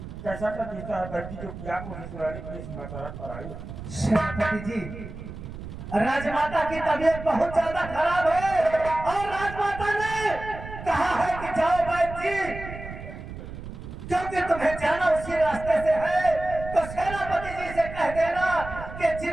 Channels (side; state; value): right; noise; rumble, 11 dB below the sound